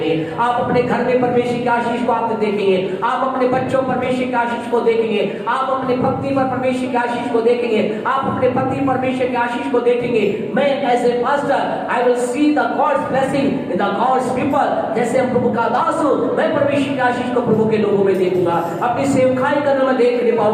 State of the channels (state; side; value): identical; both; correlation 1.00